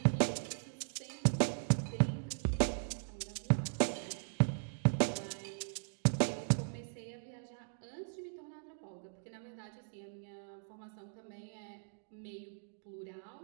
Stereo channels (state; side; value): silent; left; digital silence